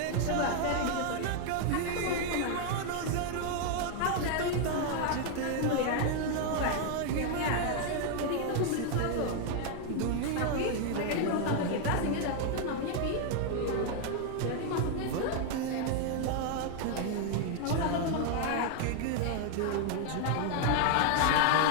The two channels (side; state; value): both; different; correlation 0.00